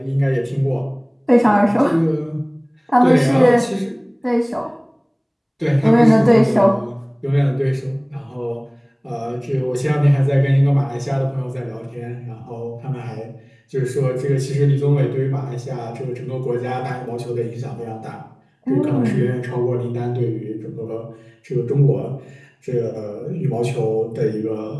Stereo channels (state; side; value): identical; both; correlation 1.00